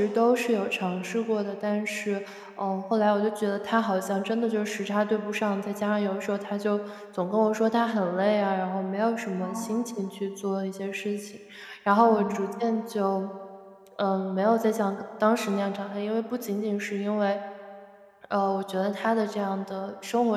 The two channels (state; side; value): identical; both; correlation 1.00